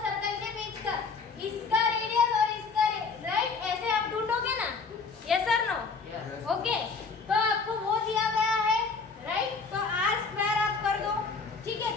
सर्कल के बीच का, इसका रेडियस और इसका राइट. ऐसे आप ढूंढोगे ना. यस और नो? ओके. तो आपको वो दिया गया है राइट. तो r² आप कर दो. ठीक है.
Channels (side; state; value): right; quieter; 4.7 dB